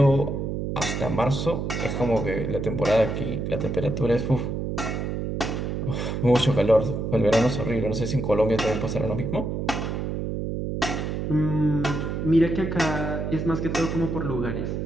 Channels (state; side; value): noise; right; hum, 3 dB below the sound